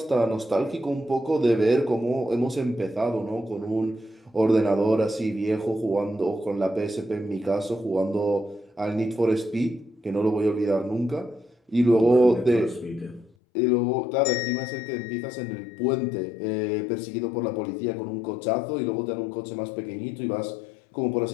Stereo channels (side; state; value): right; drops out; at 13.3 s